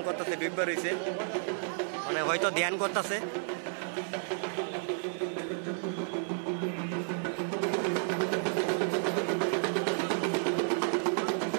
করতেছে, ডুববে রয়েছে, মানে হয়তো ধ্যান করতেছে।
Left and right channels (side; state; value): left; silent; digital silence